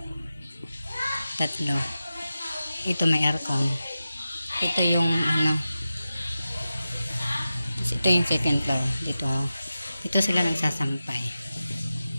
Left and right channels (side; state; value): both; inverted; correlation -0.93